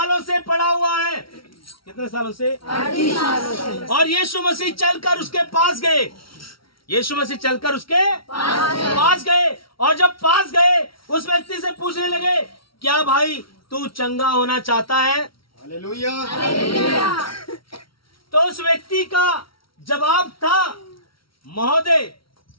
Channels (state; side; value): late; right; 0.74 ms